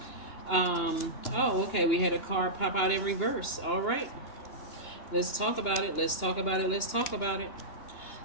Okay, we had a card pop out in reverse. All right, let's talk about it. Let's talk about it. Let's talk about it.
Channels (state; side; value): late; right; 2.9 ms